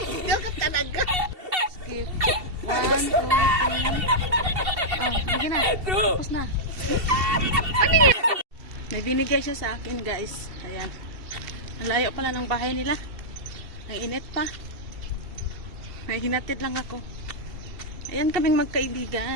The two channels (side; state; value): left; late; 2.7 ms